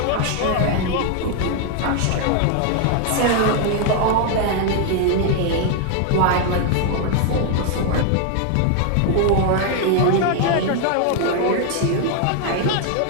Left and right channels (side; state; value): both; different; correlation 0.00